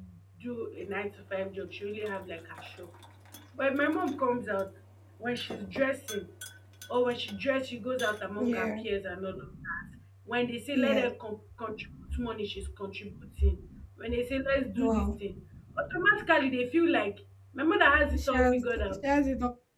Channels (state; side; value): identical; both; correlation 1.00